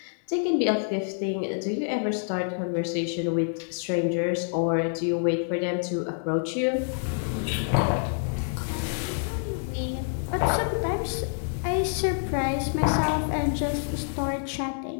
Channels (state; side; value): silent; right; digital silence